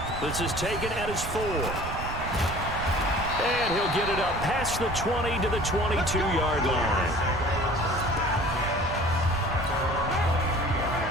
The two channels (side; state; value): right; noise; rumble, 8 dB below the sound